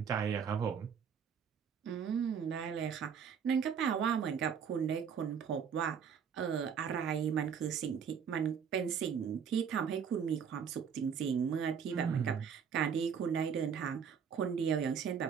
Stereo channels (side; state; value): left; quieter; 7.2 dB